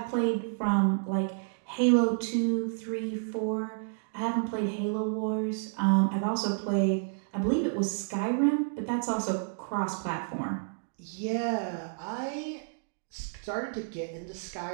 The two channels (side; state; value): left; silent; digital silence